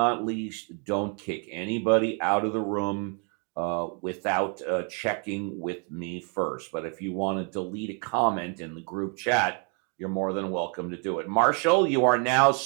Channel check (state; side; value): quieter; left; 38.3 dB